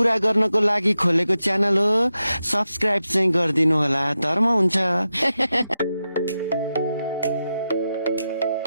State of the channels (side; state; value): both; inverted; correlation -0.90